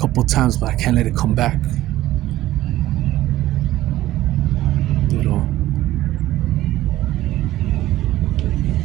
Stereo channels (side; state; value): left; quieter; 15.2 dB